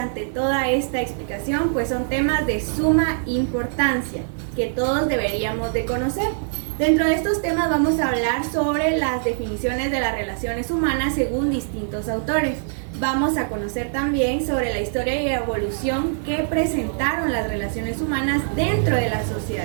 toda esta explicación, pues son temas de suma importancia que todos deberíamos de conocer. Dentro de estos temas vamos a hablar sobre las definiciones de las relaciones humanas según distintos autores. Vamos a conocer también sobre la historia y evolución que presentaron las relaciones humanas dentro de la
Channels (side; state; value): left; silent; digital silence